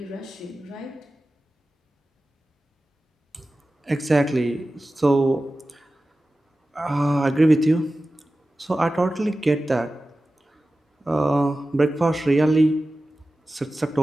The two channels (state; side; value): normal; both; correlation 0.95